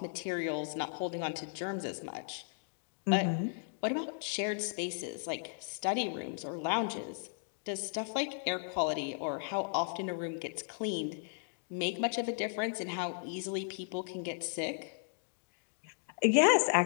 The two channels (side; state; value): right; silent; digital silence